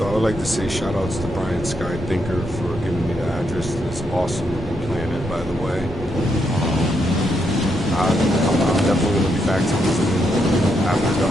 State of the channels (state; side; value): normal; both; correlation 0.79